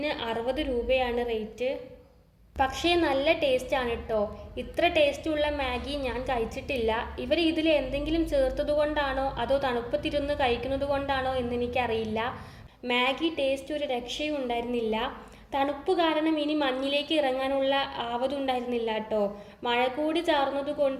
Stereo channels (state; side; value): identical; both; correlation 1.00